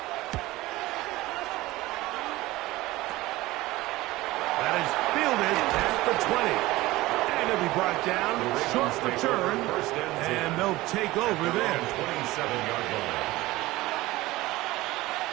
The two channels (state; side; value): quieter; left; 18.6 dB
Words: That is fielded at the 20. And it'll be brought down, short return, and they'll take over there. 27-yard line.